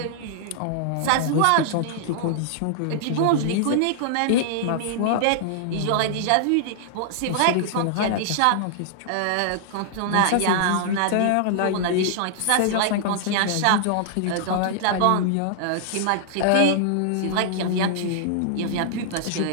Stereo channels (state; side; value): different; both; correlation -0.01